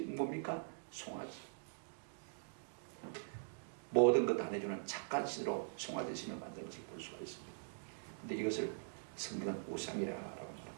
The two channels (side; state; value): left; silent; digital silence